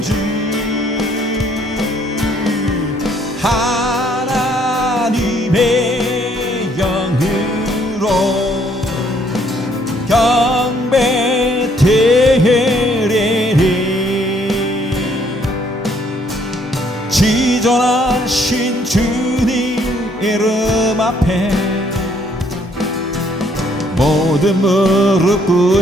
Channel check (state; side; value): normal; both; correlation 0.66